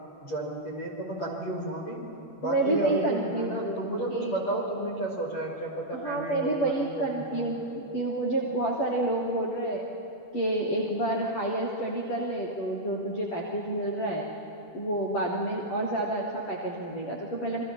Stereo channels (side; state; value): right; late; 10 ms